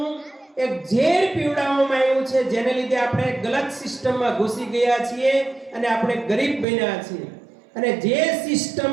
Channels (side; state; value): left; drops out; at 6.7 s